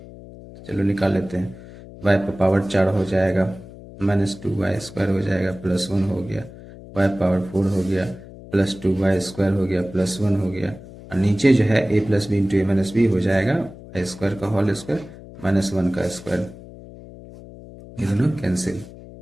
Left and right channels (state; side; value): noise; left; hum, 17 dB below the sound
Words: चलो निकाल लेते हैं। y पर पावर 4 हो जाएगा, -2y² हो जाएगा, +1 हो गया, y पावर 4 हो गया, +2y² हो गया, +1 हो गया, और नीचे जो है a + b into a - b हो जाएगा y² का होल स्क्वायर -1 का स्क्वायर, ये दोनों कैंसिल।